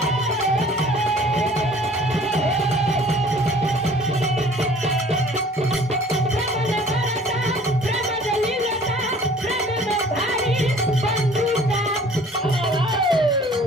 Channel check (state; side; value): normal; both; correlation 0.51